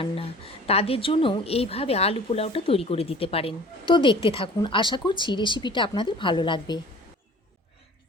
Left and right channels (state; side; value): normal; both; correlation 0.46